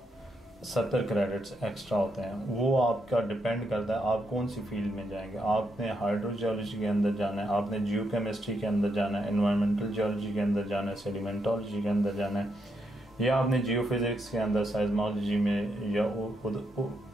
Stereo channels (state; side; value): normal; both; correlation 0.80